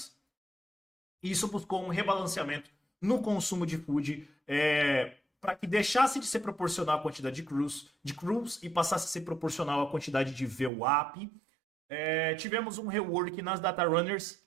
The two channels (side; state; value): left; drops out; at 10.7 s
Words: Isso buscou um rebalanceamento no consumo de food, para que deixasse de ser proporcional à quantidade de crews e passasse a ser proporcional à quantidade de VWAP. Tivemos um rework nas data runners.